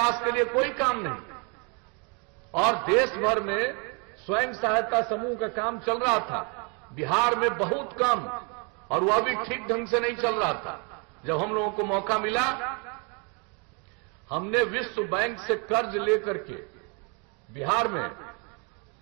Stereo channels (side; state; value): left; quieter; 34.1 dB